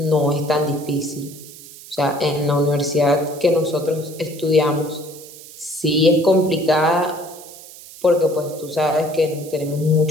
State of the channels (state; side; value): noise; right; hiss, 17 dB below the sound